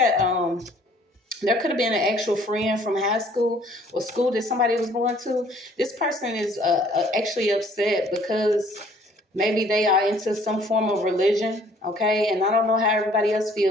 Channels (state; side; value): normal; both; correlation 0.58